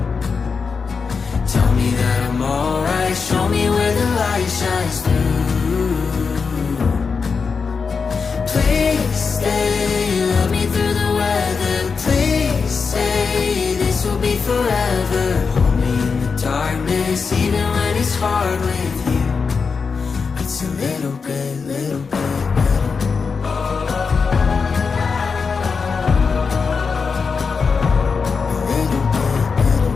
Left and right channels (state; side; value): quieter; right; 5.2 dB